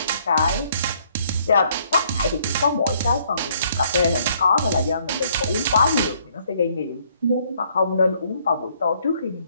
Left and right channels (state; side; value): inverted; both; correlation -0.66